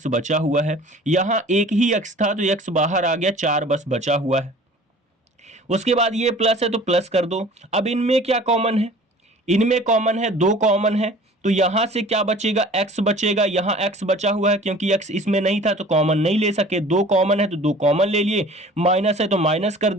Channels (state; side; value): normal; both; correlation 0.46